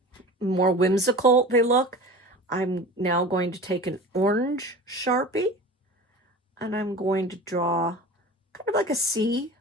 whimsical they look. I'm now going to take an orange Sharpie and I'm going to draw kind of like a C,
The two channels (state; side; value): normal; both; correlation 0.36